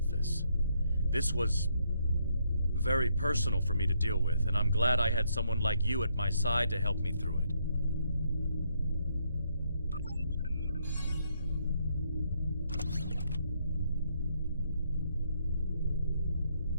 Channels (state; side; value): inverted; both; correlation -0.74